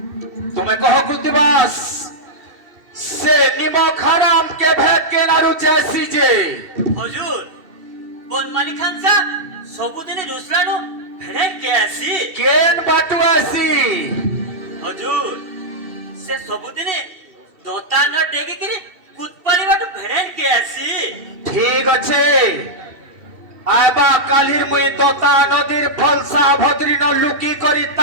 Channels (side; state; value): left; late; 2.7 ms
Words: तुम्हें कहो कृतिवास से निमक हराम के भेद के नारु जैसी जे হুজুর বনমালী খান সা সবুদিনে রুসলানো ভেড়ে কে আসি केन बाटू ऐसी হুজুর সে সবুদিনে দোতান ডেগে কিরি কুতপাড়ি বাটু ভেড়ে কে আসি ठीक अच्छे आबा कालिर मुई तोता नदीर फलसा भद्री न लुकी करी